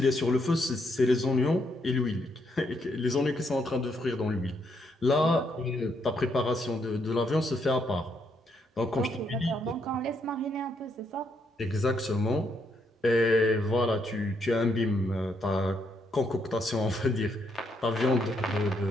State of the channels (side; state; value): both; normal; correlation 0.75